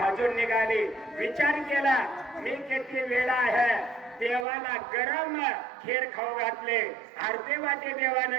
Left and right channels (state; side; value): drops out; left; at 4.5 s